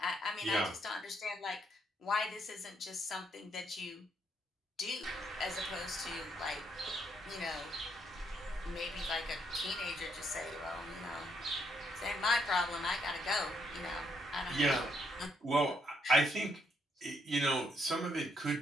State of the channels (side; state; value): both; normal; correlation 0.74